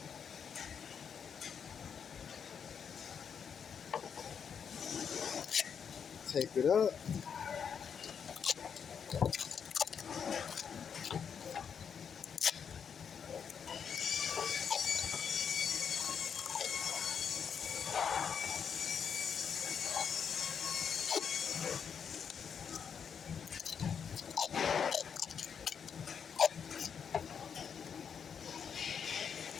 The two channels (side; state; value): right; quieter; 7.1 dB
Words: Tape it up.